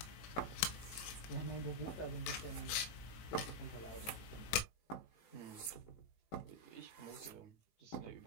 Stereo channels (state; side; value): late; right; 19 ms